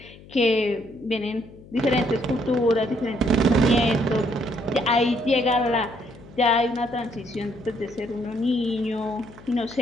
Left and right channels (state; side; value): noise; left; hum, 21 dB below the sound